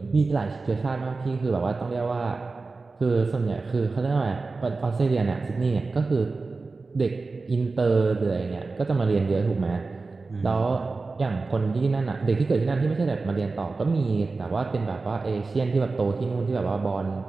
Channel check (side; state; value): left; quieter; 3.9 dB